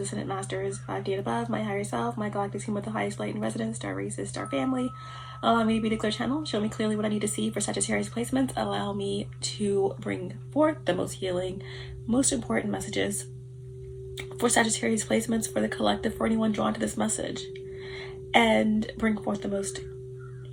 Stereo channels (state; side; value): identical; both; correlation 1.00